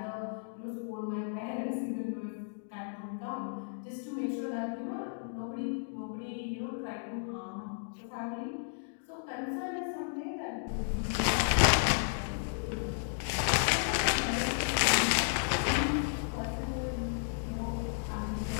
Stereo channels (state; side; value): silent; right; digital silence